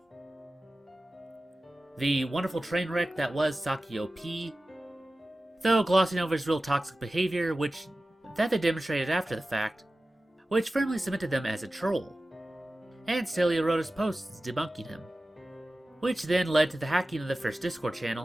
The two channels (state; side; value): normal; both; correlation 0.96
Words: The wonderful train wreck that was Saki OP, though glossing over his real toxic behavior, which they demonstrated after the fact, which firmly cemented them as a troll, and Celia wrote his posts debunking him, which then led to the hacking of the first Discord